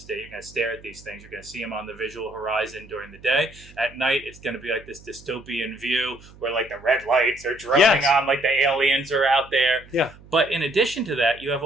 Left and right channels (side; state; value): right; noise; hum, 22 dB below the sound